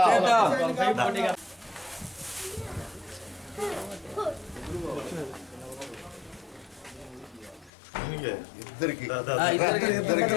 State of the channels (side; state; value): right; drops out; at 7.7 s